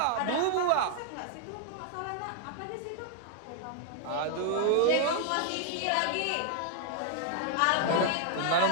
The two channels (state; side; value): different; both; correlation 0.00